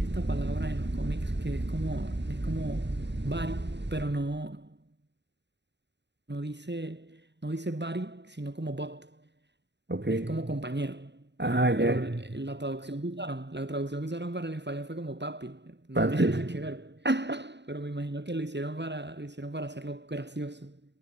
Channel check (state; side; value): late; left; 0.51 ms